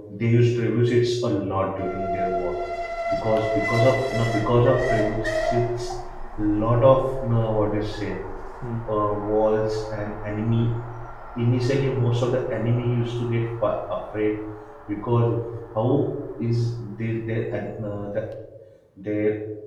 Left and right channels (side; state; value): both; identical; correlation 1.00